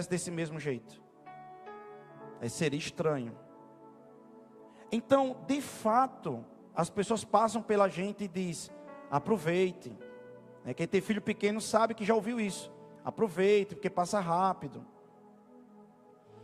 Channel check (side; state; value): both; identical; correlation 1.00